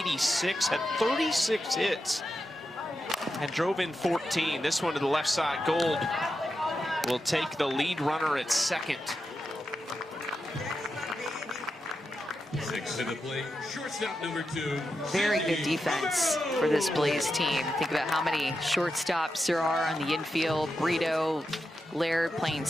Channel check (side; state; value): both; normal; correlation 0.88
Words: had 36 hits, and drove in 14. This one to the left side. Gold will take the lead runner at second. Next to the plate, shortstop number 2. Very good defense for this Blaze team. Think about how many shortstops there are on the infield. Brito, Laird playing